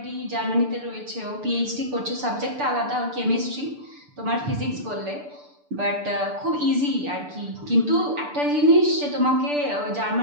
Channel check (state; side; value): late; left; 6.8 ms